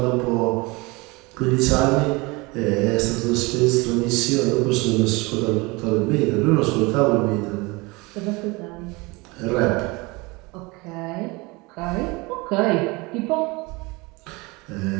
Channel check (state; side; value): quieter; left; 25.1 dB